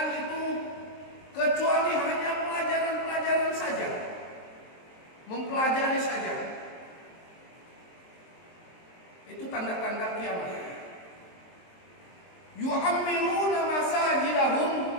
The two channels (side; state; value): right; late; 23 ms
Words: itu kecuali hanya pelajaran-pelajaran saja, mempelajari saja. Itu tanda-tanda kiamat. Yu'ammiruna masajidahum,